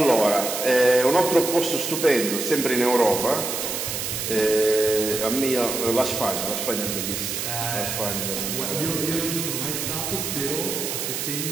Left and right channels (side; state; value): right; noise; hiss, 3 dB below the sound